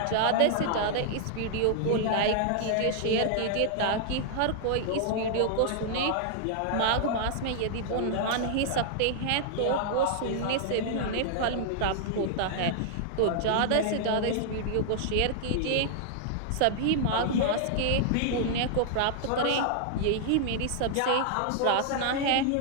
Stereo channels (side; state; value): both; different; correlation -0.01